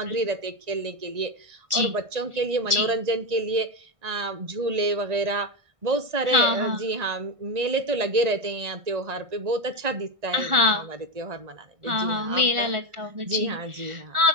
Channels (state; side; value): late; left; 1.4 ms